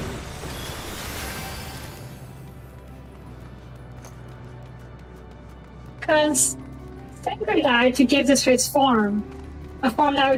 Because Thancred died to give this place form, a form that we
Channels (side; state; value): both; identical; correlation 1.00